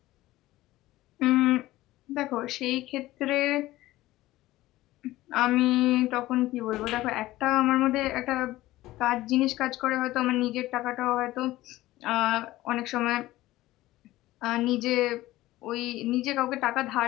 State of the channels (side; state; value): right; quieter; 16.9 dB